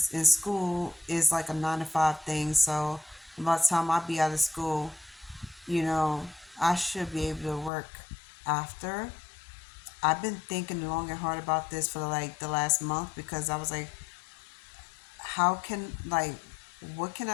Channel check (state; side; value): drops out; right; at 7.7 s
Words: in school is like a 9 to 5 thing. So by the time I be out of school, I should be able to work after. I've been thinking long and hard about this for like the last month because I was like, how can like what can